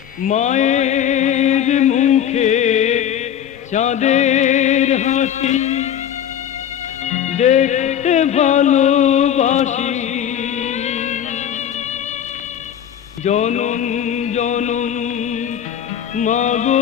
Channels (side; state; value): right; quieter; 9.7 dB